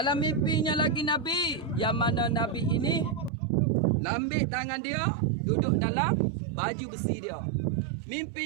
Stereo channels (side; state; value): left; drops out; at 3.3 s